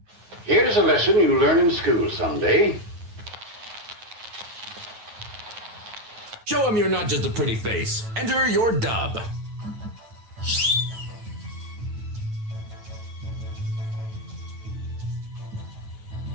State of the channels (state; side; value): late; left; 9.4 ms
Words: Here's a lesson you learn in school someday. Show him you're not just a pretty face. Enter your dub.